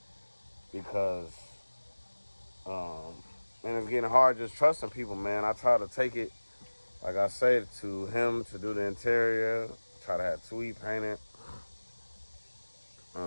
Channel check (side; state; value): both; inverted; correlation -1.00